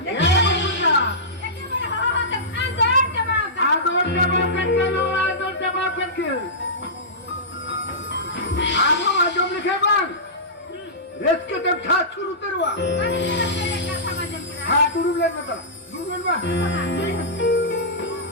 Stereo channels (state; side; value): normal; both; correlation -0.17